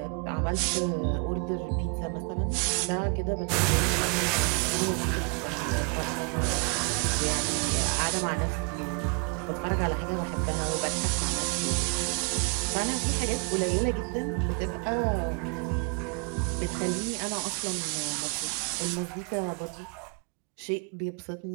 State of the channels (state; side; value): quieter; left; 35.9 dB